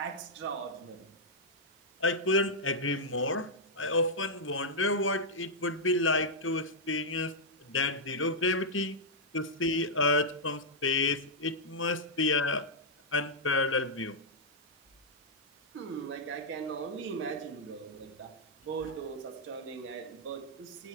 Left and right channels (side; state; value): both; normal; correlation -0.07